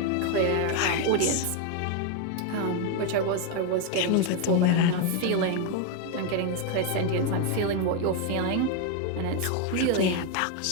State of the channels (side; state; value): both; different; correlation 0.01